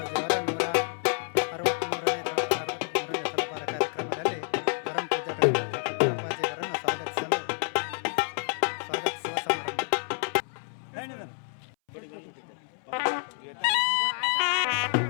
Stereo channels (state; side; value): silent; right; 59 dB below the other